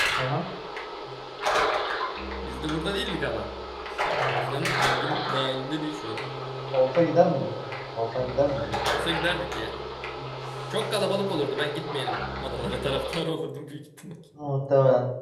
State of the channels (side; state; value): both; identical; correlation 1.00